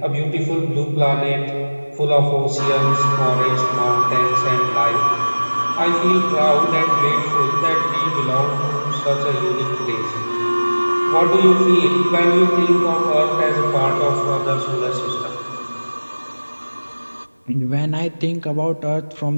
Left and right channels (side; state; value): both; inverted; correlation -1.00